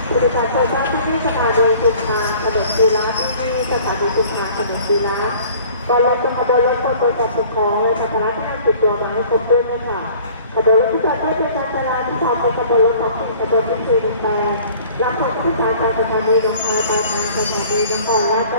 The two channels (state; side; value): inverted; both; correlation -0.50